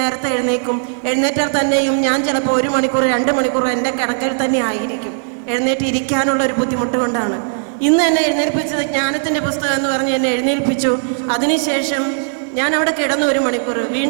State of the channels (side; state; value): left; silent; digital silence